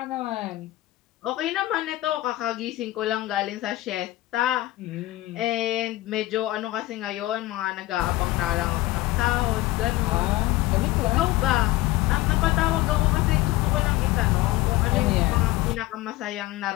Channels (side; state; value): right; quieter; 17.5 dB